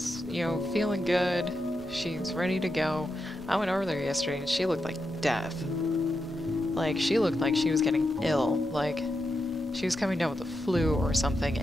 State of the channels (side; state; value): both; normal; correlation 0.87